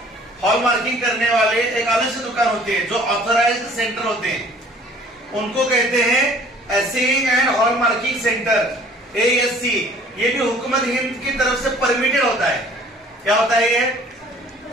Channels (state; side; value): normal; both; correlation 0.53